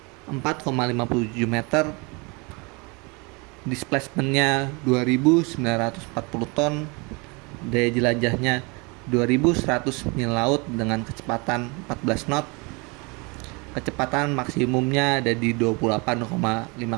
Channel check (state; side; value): quieter; left; 29.0 dB